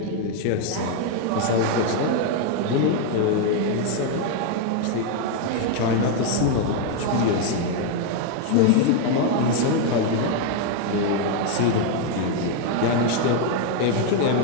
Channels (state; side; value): different; both; correlation 0.01